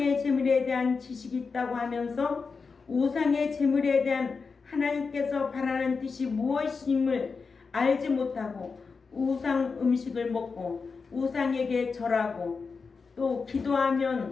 재물에 대한 지식이 있다고 하면서 우상의 재물에 대한 하나님께서 바라는 뜻이 무엇임을 알지 못하고 우상 음식을 먹고 우상에게 절하고 또 기도하고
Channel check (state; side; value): quieter; right; 4.9 dB